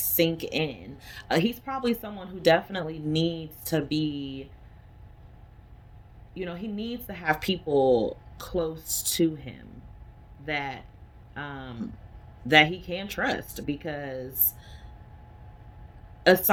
in. He's probably someone who definitely needs to be, he needs to have people close to him that um that he can trust, because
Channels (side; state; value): both; identical; correlation 1.00